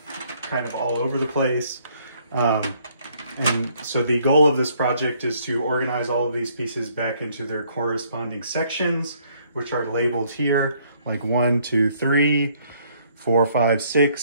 kind of all over the place. And so the goal of this project is to organize all of these pieces back into their corresponding sections, which are labeled here, like 1, 2, 3, 4, 5, 6,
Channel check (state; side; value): inverted; both; correlation -0.65